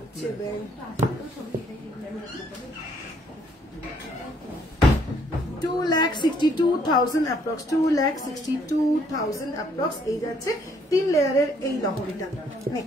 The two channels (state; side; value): normal; both; correlation 0.66